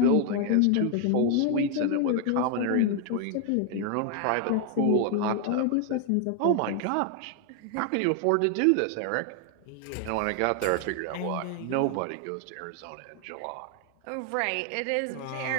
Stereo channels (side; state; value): both; different; correlation 0.00